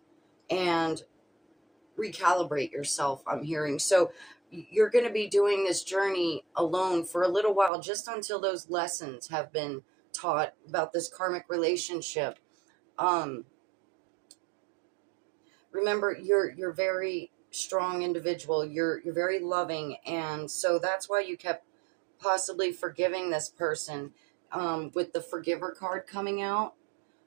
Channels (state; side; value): drops out; left; at 7.7 s